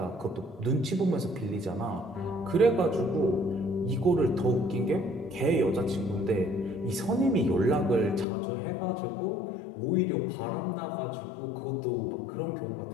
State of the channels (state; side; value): drops out; right; at 8.2 s